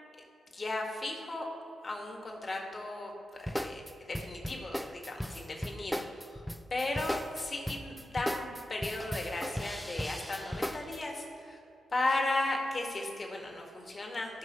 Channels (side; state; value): both; normal; correlation 0.92